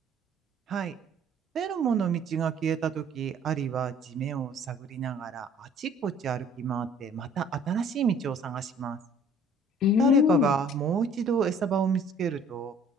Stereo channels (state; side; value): normal; both; correlation 0.54